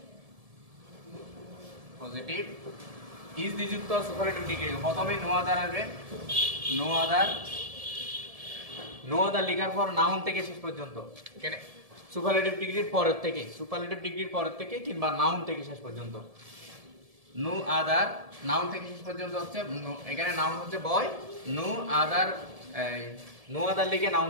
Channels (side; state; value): left; late; 1.7 ms